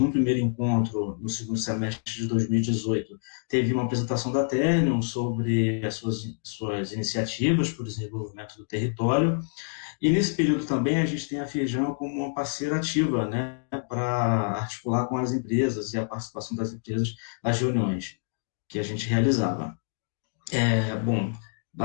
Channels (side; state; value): right; silent; digital silence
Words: primeiro encontro, no segundo semestre de 2018, teve uma apresentação da Ternium sobre as suas iniciativas para o desenvolvimento do território, e nesse período também a gente tem a Firjan como uma parceira ativa, né, para articular com as empresas e a participação das empresas nas reuniões que a gente realizava. Bom,